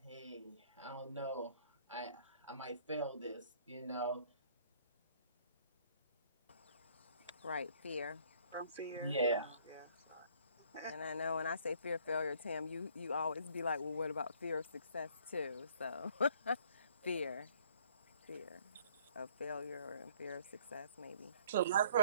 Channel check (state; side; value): inverted; both; correlation -0.59